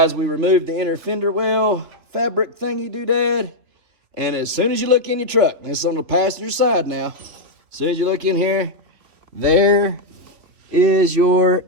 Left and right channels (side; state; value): left; late; 3.0 ms